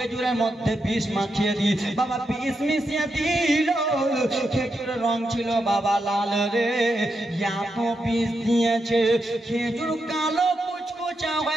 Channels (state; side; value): normal; both; correlation 0.85